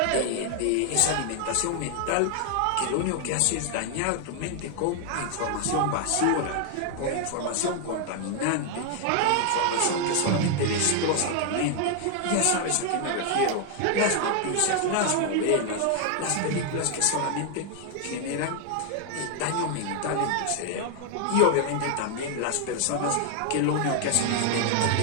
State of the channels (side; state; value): both; different; correlation 0.00